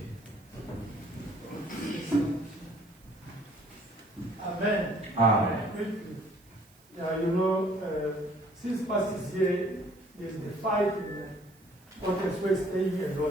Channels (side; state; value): right; noise; hiss, 29 dB below the sound